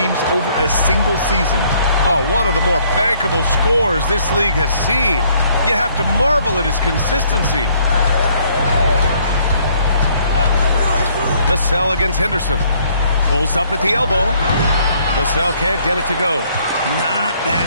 over a single season. Oh, one of the more bankable scores this league has seen. You have to marvel at his consistency. Vassell against Henderson. Pulls up at the elbow. Vassell can't get it to go. Not that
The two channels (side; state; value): both; inverted; correlation -0.64